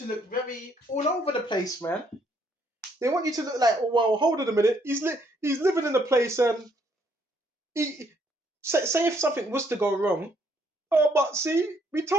look very all over the place, man. They want you to look like, oh well, hold on a minute. He's living in a place and he say if something was to go wrong. Oh, but see, we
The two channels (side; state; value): both; normal; correlation 0.69